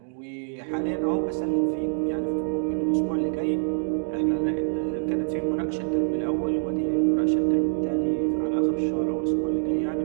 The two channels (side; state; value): left; silent; digital silence